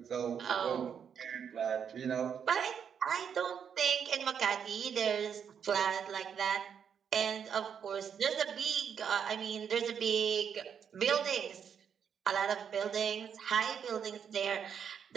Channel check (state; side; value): quieter; left; 7.7 dB